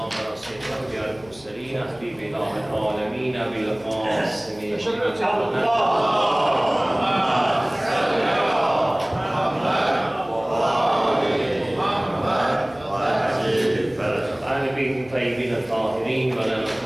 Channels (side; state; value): left; noise; hum, 24 dB below the sound